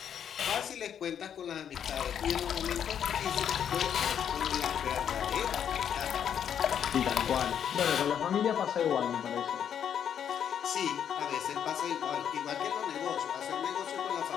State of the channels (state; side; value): quieter; right; 8.7 dB